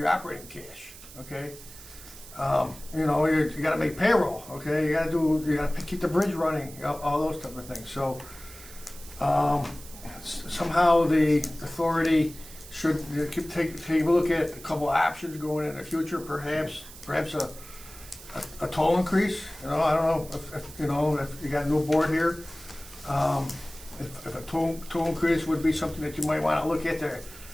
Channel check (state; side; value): noise; right; hiss, 17 dB below the sound